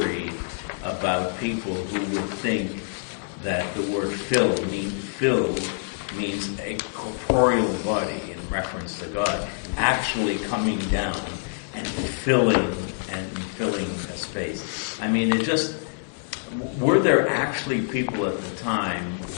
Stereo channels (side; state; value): right; silent; digital silence